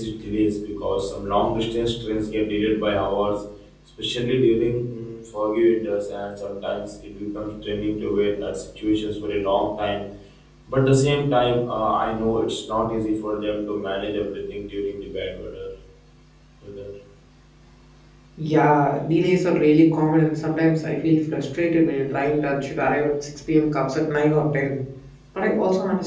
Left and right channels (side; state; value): both; identical; correlation 1.00